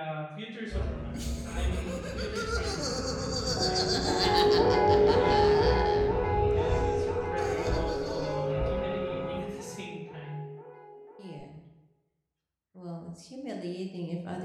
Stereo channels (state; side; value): identical; both; correlation 1.00